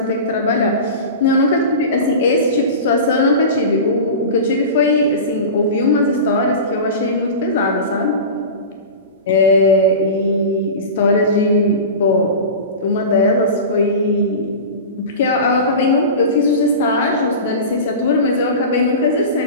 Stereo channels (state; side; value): inverted; both; correlation -0.30